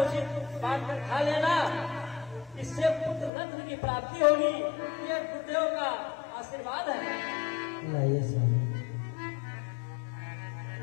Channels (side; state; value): right; drops out; at 3.3 s